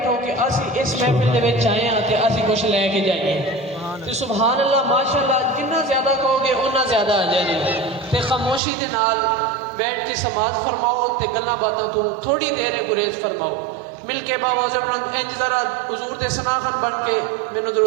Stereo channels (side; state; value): left; drops out; at 8.6 s